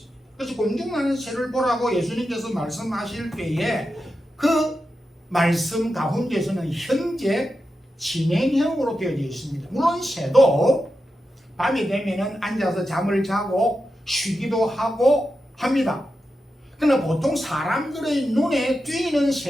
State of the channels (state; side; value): normal; both; correlation 0.89